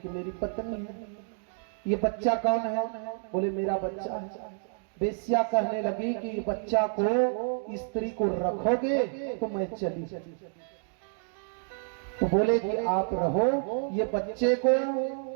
मेरी पत्नी है। ये बच्चा कौन है? बोले मेरा बच्चा है। वेश्या कहने लगी कि बच्चा को स्त्री को रखोगे तो मैं चली। तो बोले कि आप रहो, ये बच्चे को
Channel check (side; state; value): left; silent; digital silence